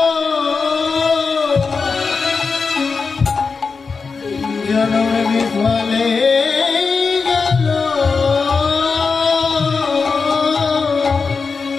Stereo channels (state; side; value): quieter; right; 4.9 dB